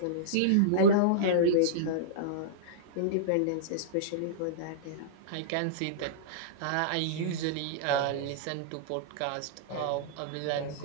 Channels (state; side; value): different; both; correlation -0.03